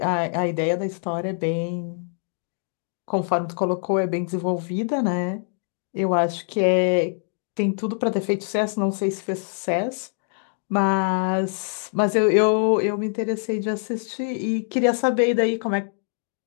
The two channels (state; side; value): silent; right; digital silence